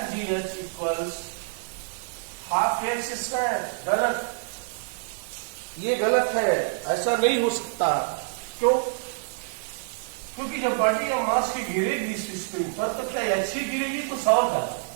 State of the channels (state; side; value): silent; left; digital silence